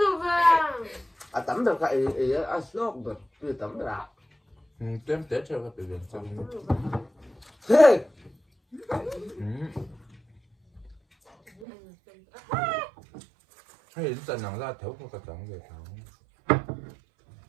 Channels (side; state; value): left; drops out; at 11.7 s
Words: về. à tắm được cái ấy à sốt được từ tắm được à Tuyến Tết cho các bệnh viện xong. thế Hay dần nắng ra thấu không cả trắng về thấu.